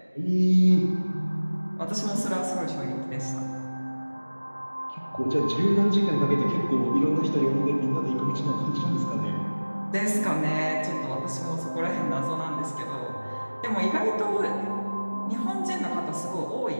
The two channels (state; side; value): inverted; both; correlation -1.00